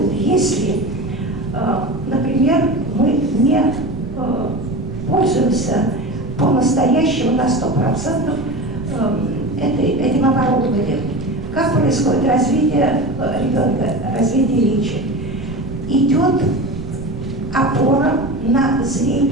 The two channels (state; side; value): noise; right; rumble, 11 dB below the sound